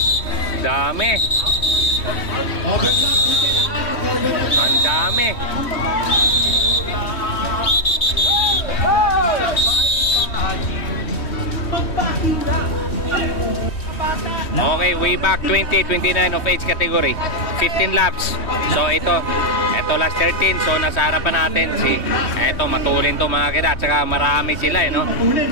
Dami. Ang dami. Okay, way back 20-29 of age category. 15 laps. So ito last 13. So nasa harapan natin si ito, matulin to mga kida. At saka marami sila, no?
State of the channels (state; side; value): late; right; 3.1 ms